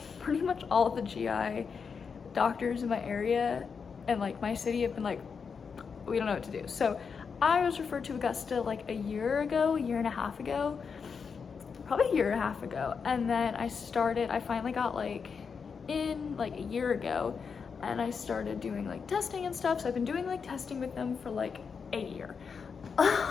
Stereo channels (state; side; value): quieter; right; 5.9 dB